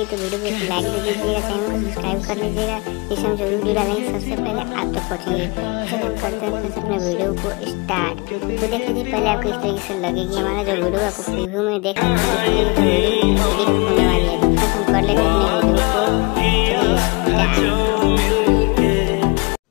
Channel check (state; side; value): quieter; right; 29.5 dB